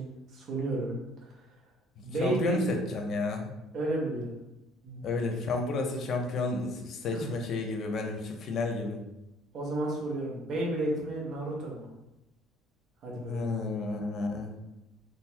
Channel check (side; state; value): both; normal; correlation 0.58